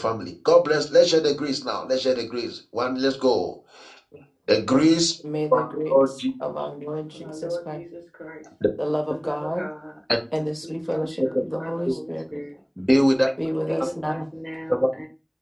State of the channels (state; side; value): identical; both; correlation 1.00